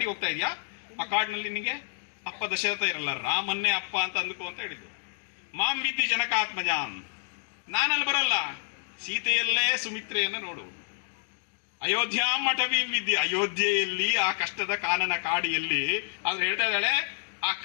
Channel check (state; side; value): silent; right; 59 dB below the other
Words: ಹೋಗ್ತಾ ಇದೀಯಾ, ಆ ಕಾಡಿನಲ್ಲಿ ನಿನಗೆ ಅಪ್ಪ ದಶರಥ ಇರಲ್ಲ, ರಾಮನ್ನೇ ಅಪ್ಪ ಅಂತ ಅಂದ್ಕೋ ಅಂತ ಹೇಳಿದ್ರು. ಮಾಂ ವಿದ್ಯೆ ಜನಕಾತ್ಮಜಾಂ, ನಾನಲ್ಲಿ ಬರಲ್ಲ, ಸೀತೆಯಲ್ಲೇ ಸುಮಿತ್ರೆಯನ್ನ ನೋಡು. ಅಯೋಧ್ಯಾಂ ಅಟವೀಂ ವಿದ್ಯೆ, ಅಯೋಧ್ಯೆಯಲ್ಲಿ ಆ ಕಷ್ಟದ ಕಾನನ ಕಾಡಿಯಲ್ಲಿ. ಆದ್ರೆ ಹೇಳ್ತಾ ಇದ್ದಾಳೆ, ಆ